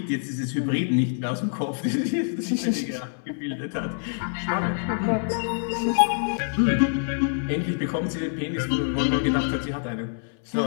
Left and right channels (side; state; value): right; silent; 61 dB below the other